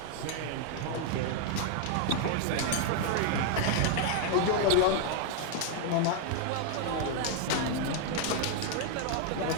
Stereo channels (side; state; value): both; different; correlation 0.00